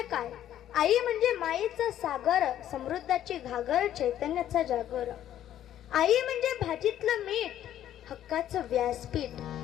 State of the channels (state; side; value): quieter; right; 11.5 dB